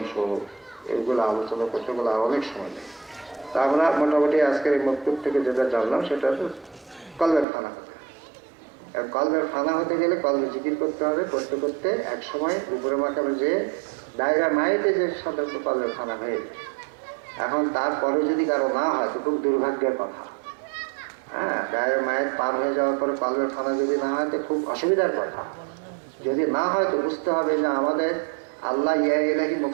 এগুলো আলোচনা করতে গেলে আর অনেক সময় নেই। তা আমরা মোটামুটি আজকের এই মক্তব থেকে যেটা জানলাম সেটা তো কলবের ফানা হতে, কলবের ফানা হতে গেলে কলবে জিকির করতে হবে, করতে করতে এক সময় উপরে মাকামে যে দায়রা মাইতে যে সাধারণত কলবের ফানা হয়ে যায়। এখন তারপরে যদি কারো না হয় তো খুব দুর্ভাগ্যের কথা। হ্যাঁ, দায়রা মায়ের পার হয়ে যাওয়ার পরে কলবের ফানা যদি না হয় তো খুব অসুবিধার কথা। যদি না হয় তো বুঝতে হবে যে আমাদের আল্লাহ ইয়া ইলাহি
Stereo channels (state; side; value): drops out; left; at 7.5 s